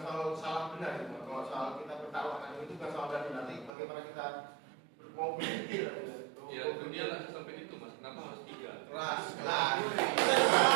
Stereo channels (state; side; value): drops out; left; at 3.7 s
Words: soal salah benar gitu. Kalau soal kita bertaruh itu bukan soal benar, nanti bagaimana kita mau berpikir Ya itu dia nggak sampai itu mas, kenapa harus tiga? kelas